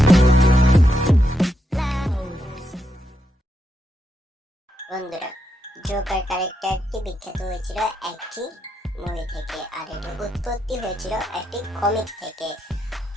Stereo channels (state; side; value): normal; both; correlation 0.82